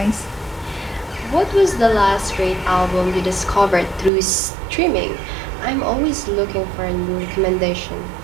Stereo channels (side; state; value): left; drops out; at 4.1 s